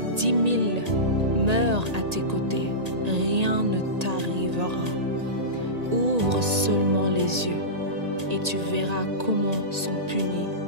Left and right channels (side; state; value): left; late; 1.8 ms